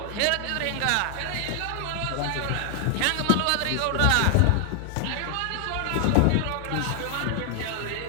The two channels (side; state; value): both; different; correlation 0.00